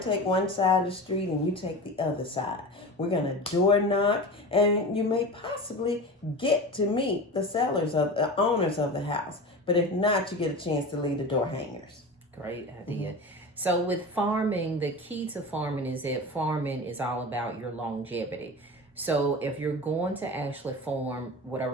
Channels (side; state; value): both; normal; correlation 0.30